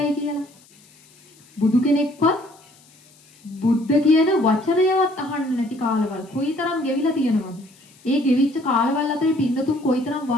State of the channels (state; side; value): noise; left; hiss, 28 dB below the sound